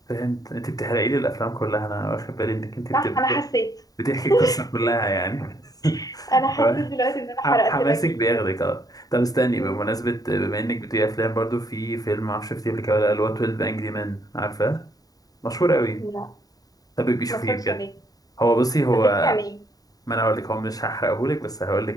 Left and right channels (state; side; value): late; right; 0.18 ms